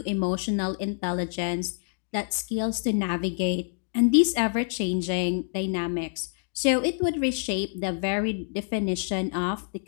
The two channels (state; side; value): silent; right; digital silence